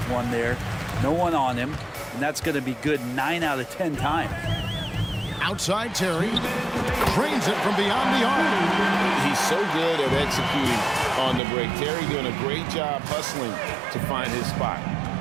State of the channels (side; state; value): left; drops out; at 11.4 s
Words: one there. No one on him. And that's going to be good 9 out of 10 times. Outside Terry. Drains it from beyond the arc. He's so good at executing on the break. Terry doing a great job hustling to find his spot.